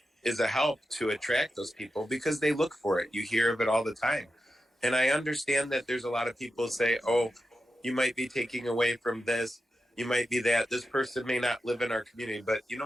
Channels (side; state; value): both; normal; correlation 0.90